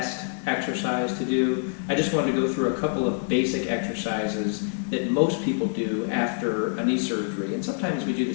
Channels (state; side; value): silent; right; digital silence